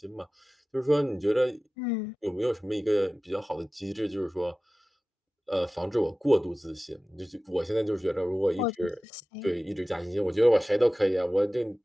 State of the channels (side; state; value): both; normal; correlation 0.96